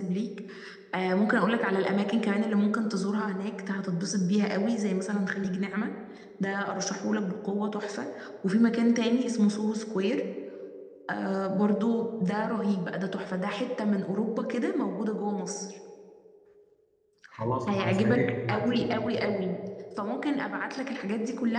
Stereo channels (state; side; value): identical; both; correlation 1.00